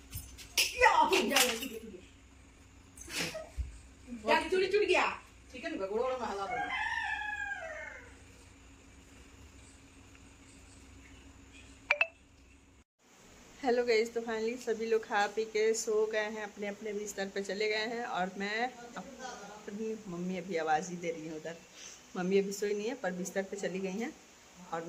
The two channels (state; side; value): identical; both; correlation 1.00